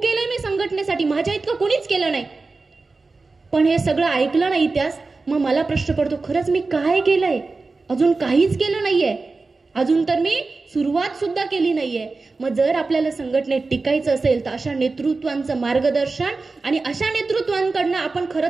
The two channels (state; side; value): quieter; left; 3.8 dB